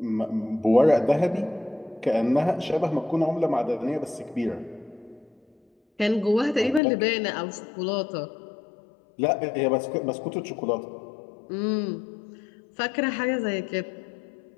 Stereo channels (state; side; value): drops out; right; at 6.8 s